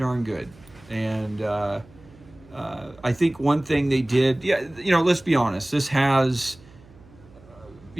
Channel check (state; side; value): noise; right; hum, 24 dB below the sound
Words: good. And I think one thing they did, let's be honest, this has,